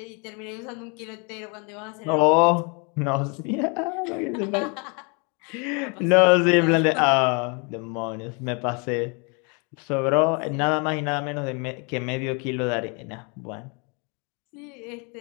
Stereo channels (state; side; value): quieter; right; 33.5 dB